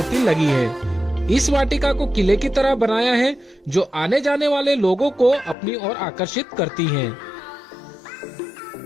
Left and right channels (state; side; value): drops out; right; at 5.6 s